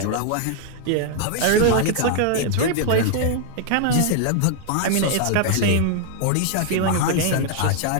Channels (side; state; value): both; different; correlation 0.00